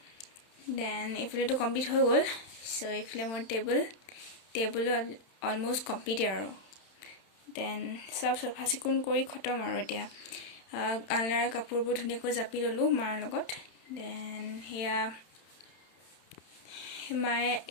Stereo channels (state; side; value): late; right; 31 ms